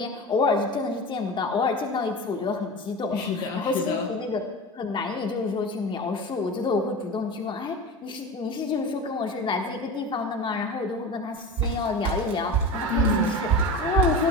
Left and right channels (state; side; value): normal; both; correlation 0.29